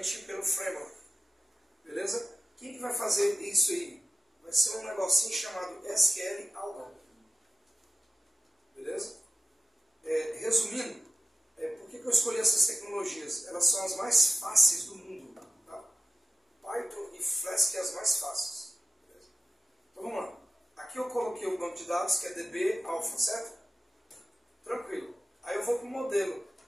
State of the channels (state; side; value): normal; both; correlation 0.93